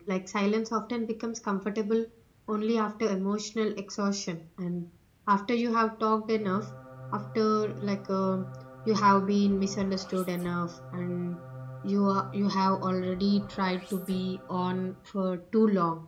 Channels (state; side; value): identical; both; correlation 1.00